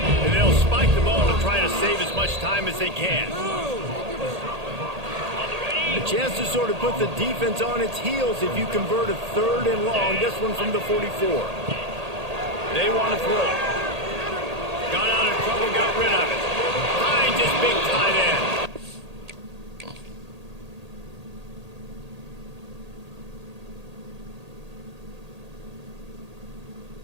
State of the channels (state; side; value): late; left; 1.8 ms